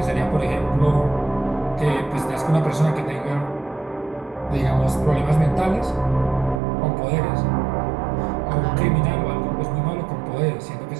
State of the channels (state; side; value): drops out; left; at 6.6 s